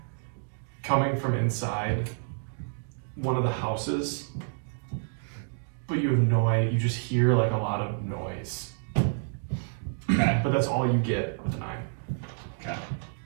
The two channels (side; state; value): left; silent; digital silence